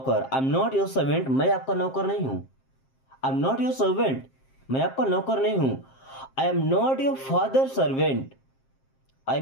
I am not your servant, मैं आपका नौकर नहीं हूं। I am not your servant, मैं आपका नौकर नहीं हूं। I am not your father servant, I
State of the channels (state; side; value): late; right; 7.5 ms